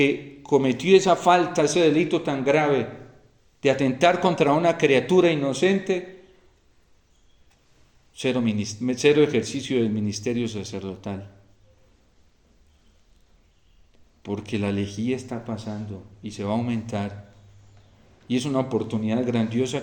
cometió esa falta, ese delito tan grave de atentar contra una criatura inocente, cero ejercicio del ministerio sacerdotal. Porque la lejía está pasando y se va a aumentar. Y es una oportunidad grandiosa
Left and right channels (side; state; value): both; identical; correlation 1.00